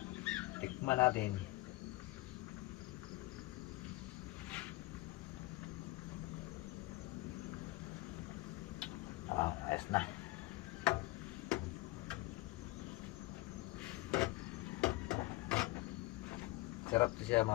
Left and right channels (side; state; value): right; quieter; 20.6 dB